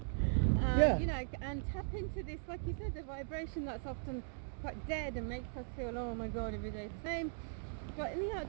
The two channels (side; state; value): left; silent; digital silence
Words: Yeah. You know, and tap into this, like you said, the vibration that's often quite dead and makes us feel, oh my god, every day the same. But in the